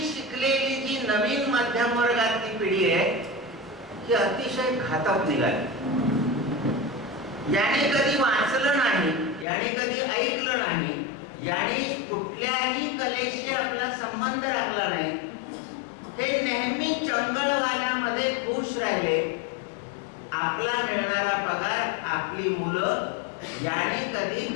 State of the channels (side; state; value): right; drops out; at 9.5 s